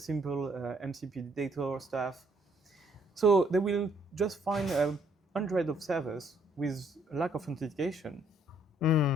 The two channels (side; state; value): both; normal; correlation 0.67